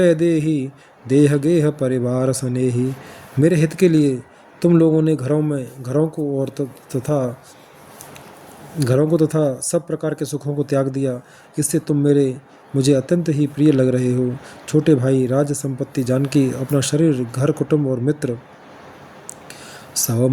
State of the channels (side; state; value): both; identical; correlation 1.00